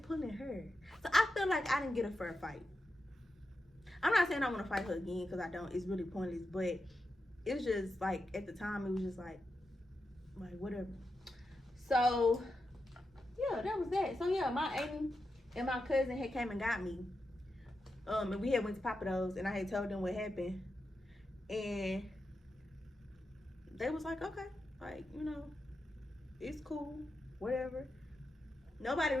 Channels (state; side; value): normal; both; correlation 0.88